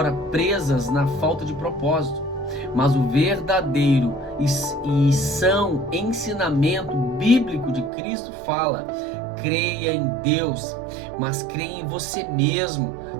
presas na falta de propósito. Mas o verdadeiro e são ensinamento bíblico de Cristo fala: creia em Deus, mas creia em você mesmo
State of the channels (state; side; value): drops out; left; at 7.9 s